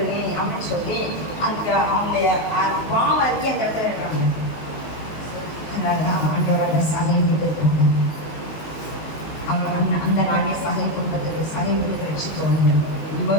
அப்படின்னு சொல்லி அந்த அவங்களுடைய பாவம் அறிக்கை அந்த இடத்துல இருக்காங்க. அதனாலதான் ஆண்டவர்கள் சகை விட்டு இருக்காங்க. அவங்க அந்த நாளே சகை குடும்பத்துக்கு சகை விட்டு ரட்சித்தவங்க.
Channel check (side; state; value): right; late; 19 ms